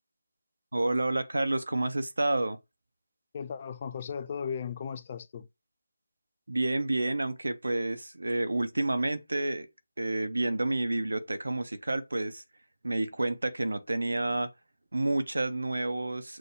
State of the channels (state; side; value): inverted; both; correlation -0.96